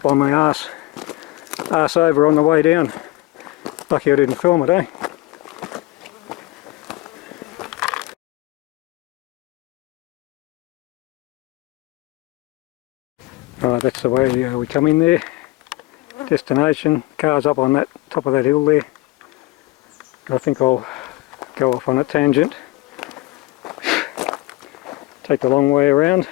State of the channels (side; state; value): right; quieter; 20.7 dB